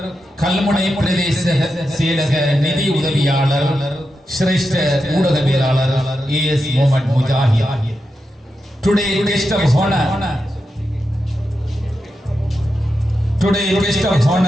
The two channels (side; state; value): both; normal; correlation 0.88